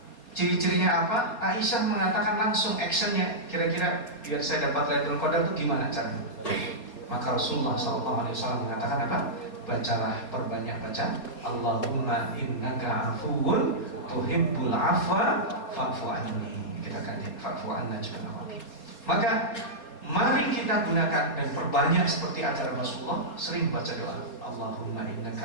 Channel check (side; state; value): right; late; 4.2 ms